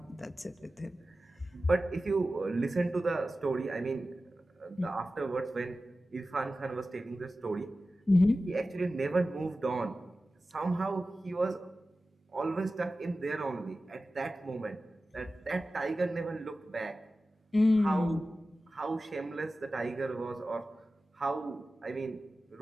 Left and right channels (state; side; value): normal; both; correlation 0.94